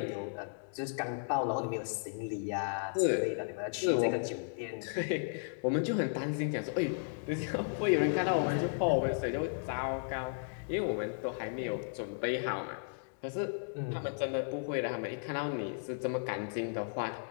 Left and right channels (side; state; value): right; silent; digital silence